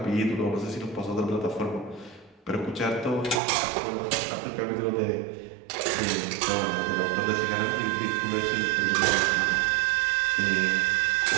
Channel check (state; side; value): drops out; left; at 3.4 s